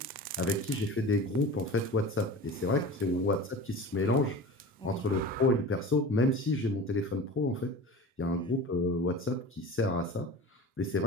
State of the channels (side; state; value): both; normal; correlation 0.35